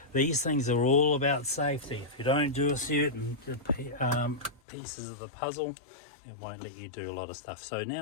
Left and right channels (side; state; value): right; drops out; at 4.6 s